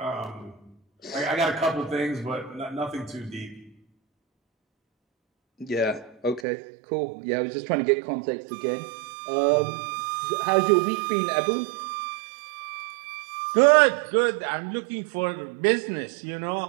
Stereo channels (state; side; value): drops out; left; at 6.5 s